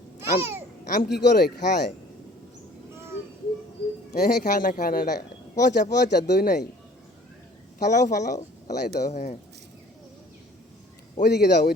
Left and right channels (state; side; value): normal; both; correlation 0.52